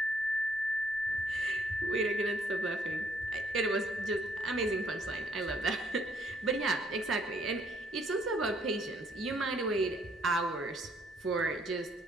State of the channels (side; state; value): both; normal; correlation 0.66